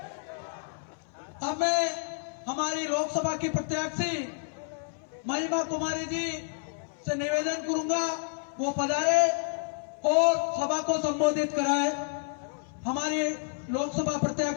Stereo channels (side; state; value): right; silent; 58 dB below the other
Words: अब मैं हमारी लोकसभा की प्रत्याशी महिमा कुमारी जी से निवेदन करूंगा वो पधारे और सभा को संबोधित कराए। हमारी लोकसभा